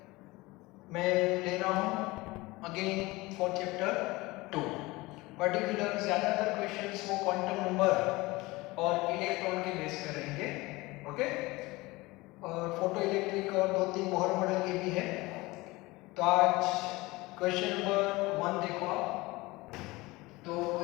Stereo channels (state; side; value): quieter; right; 21.5 dB